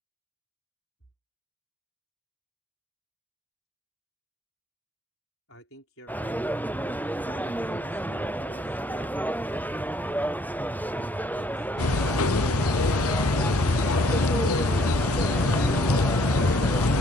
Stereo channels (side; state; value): both; normal; correlation 0.64